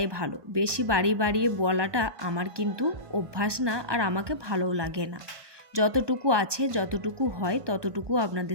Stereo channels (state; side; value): late; left; 1.2 ms